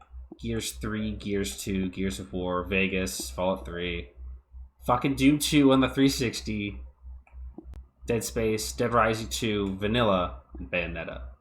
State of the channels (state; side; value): identical; both; correlation 1.00